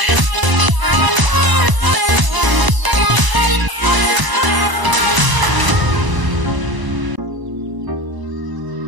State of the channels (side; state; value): left; late; 1.0 ms